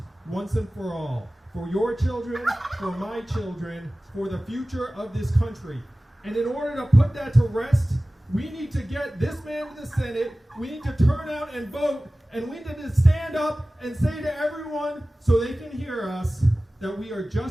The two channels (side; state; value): both; normal; correlation 0.97